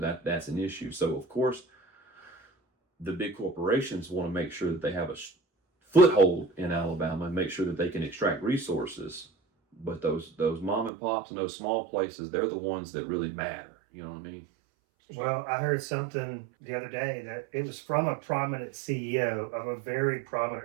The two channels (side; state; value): left; drops out; at 10.9 s